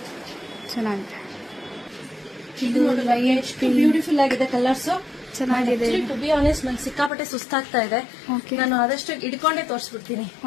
ಚೆನ್ನಾಗಿದೆ. ಇದು ಎಷ್ಟು ಬ್ಯೂಟಿಫುಲ್ ಆಗಿದೆ ಕಲರ್ಸ್, ಚೆನ್ನಾಗಿದೆ. ಟು ಬಿ ಆನೆಸ್ಟ್ ನಂಗೆ ಸಿಕ್ಕಾಪಟ್ಟೆ ಸುಸ್ತಾಗ್ತಾ ಇದೆ. ನಾನು ಆದಷ್ಟು ಇಡ್ಕೊಂಡೇ ತೋರಿಸ್ಬಿಡ್ತೀನಿ.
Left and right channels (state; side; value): drops out; right; at 7.1 s